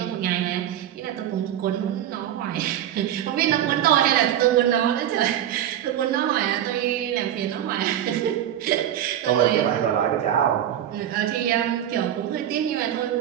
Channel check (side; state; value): left; quieter; 11.1 dB